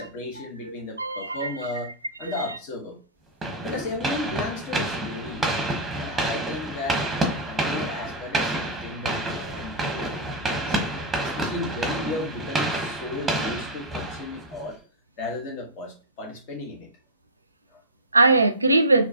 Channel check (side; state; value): both; normal; correlation -0.16